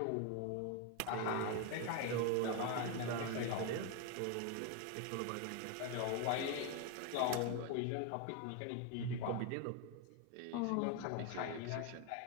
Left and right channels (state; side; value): different; both; correlation 0.01